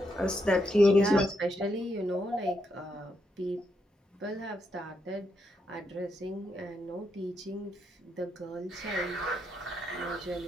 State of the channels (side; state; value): both; normal; correlation 0.80